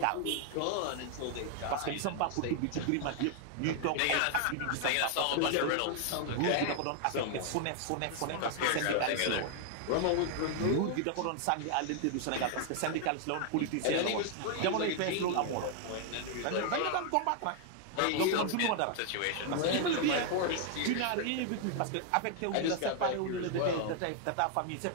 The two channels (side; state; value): both; different; correlation 0.00